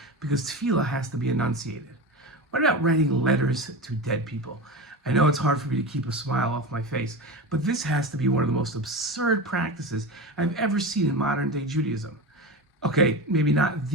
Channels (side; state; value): both; normal; correlation 0.24